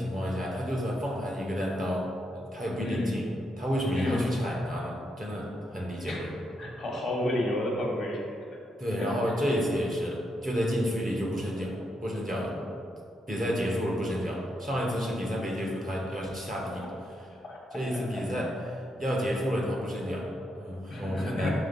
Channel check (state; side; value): normal; both; correlation 0.81